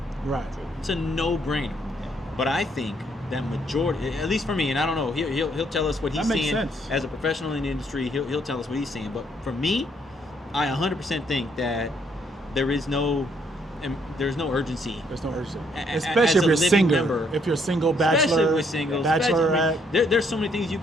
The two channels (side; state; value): both; normal; correlation 0.70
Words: Right. It's a no-brainer. But I think that majority, at least for me, and I don't know, he'll tell us what he's seeing as a professional in the industry. He'll tell us what he's seeing. But for me, I 100% think that there's no urgency. There's no urgency, especially if you're single. Member, if you're single, bachelor, especially with singles, bachelorette. There's so many things you